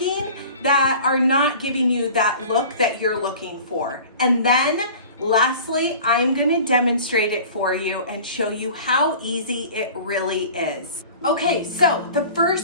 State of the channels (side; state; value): both; inverted; correlation -0.42